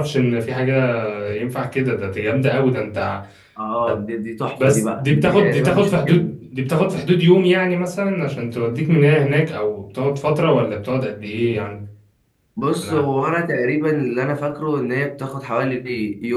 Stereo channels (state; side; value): identical; both; correlation 1.00